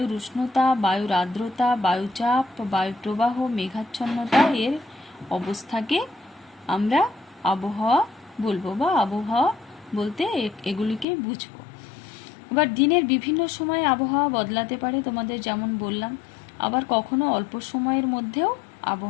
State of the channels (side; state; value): right; drops out; at 11.1 s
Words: উষ্ণতা, বায়ুর আর্দ্রতা, বায়ুচাপ, বায়ু প্রবাহ, মেঘাচ্ছন্নতা এর অবস্থাকে আমরা আবহাওয়া বলবো, বা আবহাওয়া বলতে এগুলিকে বুঝবো। এবার দিনের বিভিন্ন সময়ে আবহাওয়া বদলাতে পারে, তোমাদের যেমন বললাম, আবার কখনো অল্প সময়ের মধ্যেও